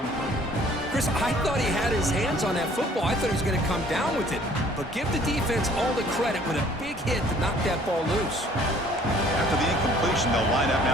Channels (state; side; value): normal; both; correlation 0.56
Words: Chris, I thought he had his hands on that football. I thought he was going to come down with it. But give the defense all the credit with a big hit to knock that ball loose. After the incompletion, they'll line up